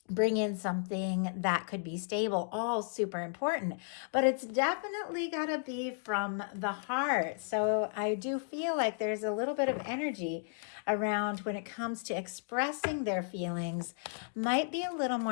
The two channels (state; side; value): silent; right; digital silence